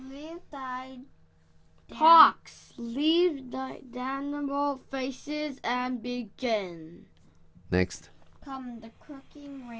thy Pox, leave thy damnable faces and begin. Next. Come the croaking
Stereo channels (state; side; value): identical; both; correlation 1.00